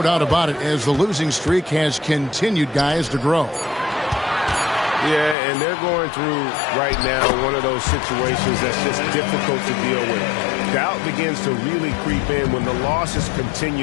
about it, as the losing streak has continued, guys, to grow. Yeah, and they're going through right now one of those situations that's just difficult to deal with. Doubt begins to really creep in when the losses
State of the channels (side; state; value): right; drops out; at 5.4 s